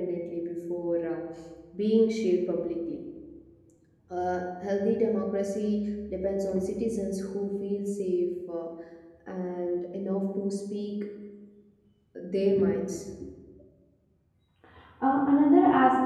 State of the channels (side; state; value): both; identical; correlation 1.00